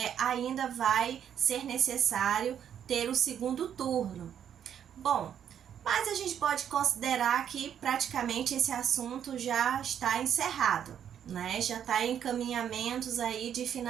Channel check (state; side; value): quieter; left; 9.1 dB